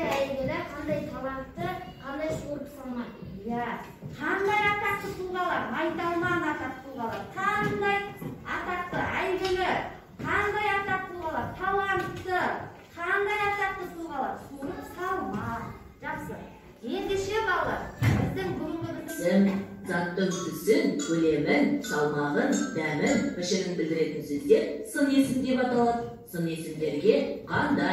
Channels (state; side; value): identical; both; correlation 1.00